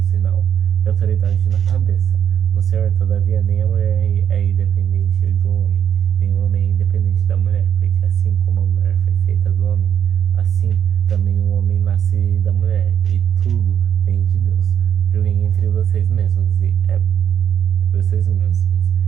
sinal de autoridade na cabeça. No Senhor, todavia, nem a mulher é independente do homem, nem o homem é independente da mulher, porque assim como a mulher foi feita do homem, assim também o homem nasce da mulher, e tudo vem de Deus. Julguem entre vocês mesmos, é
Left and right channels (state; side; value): quieter; left; 8.9 dB